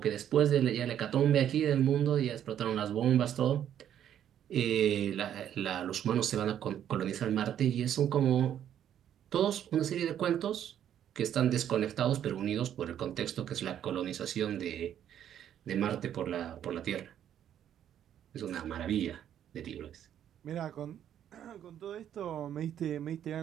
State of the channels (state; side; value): quieter; left; 10.2 dB